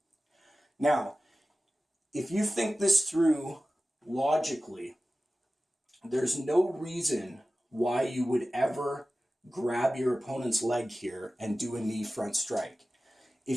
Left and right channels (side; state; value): both; normal; correlation 0.96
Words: Now, if you think this through logically, there's no reason why you would ever grab your opponent's leg here and do a knee front strike.